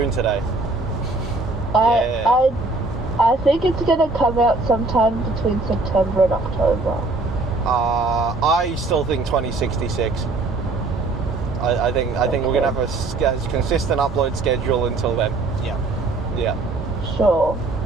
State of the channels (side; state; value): left; quieter; 3.3 dB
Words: today. I think it's gonna come out sometime between September and October. I still think 2066. I think we're gonna have a consistent upload schedule until then. Yeah. Yeah, Sure.